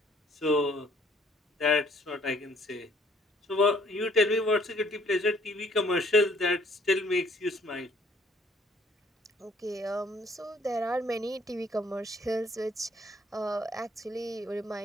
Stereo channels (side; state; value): both; normal; correlation 0.61